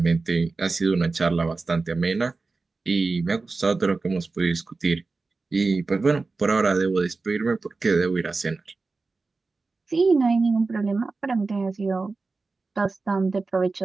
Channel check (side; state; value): left; quieter; 3.9 dB